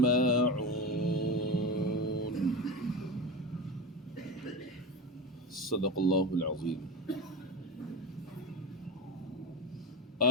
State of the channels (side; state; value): both; normal; correlation 0.23